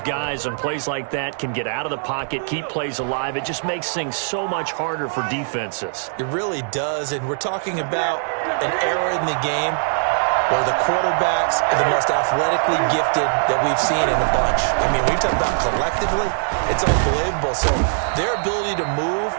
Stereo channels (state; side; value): silent; left; digital silence